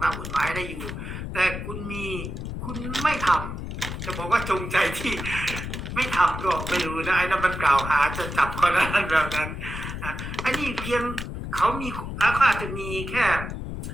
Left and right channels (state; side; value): noise; left; rumble, 6 dB below the sound